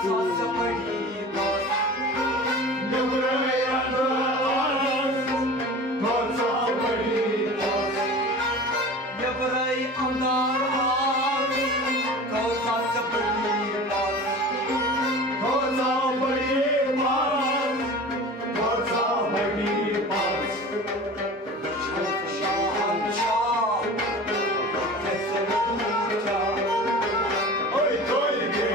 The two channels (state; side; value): normal; both; correlation 0.37